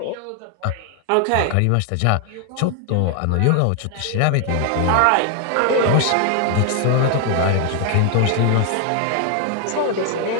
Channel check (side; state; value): both; different; correlation 0.00